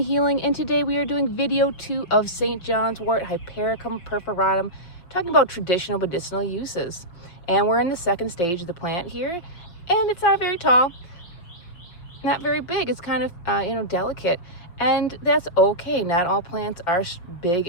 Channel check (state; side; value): late; right; 5.7 ms